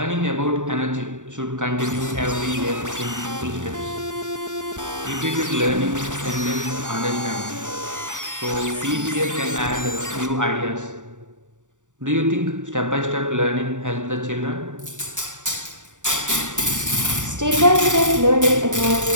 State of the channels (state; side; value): late; left; 0.86 ms